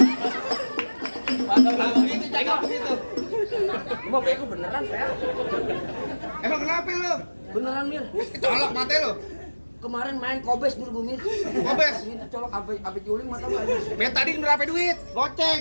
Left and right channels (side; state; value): both; inverted; correlation -1.00